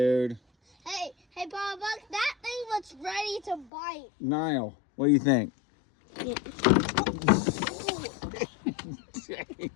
Hey, Papa Buck, that thing was ready to bite. Niall, what do you think?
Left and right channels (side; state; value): right; drops out; at 3.7 s